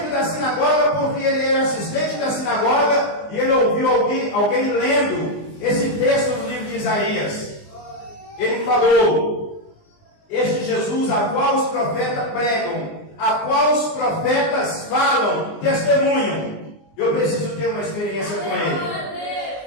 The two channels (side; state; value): right; late; 19 ms